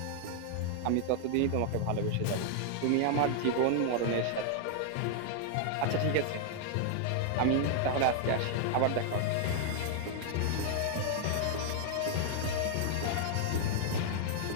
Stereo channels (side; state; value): both; different; correlation 0.00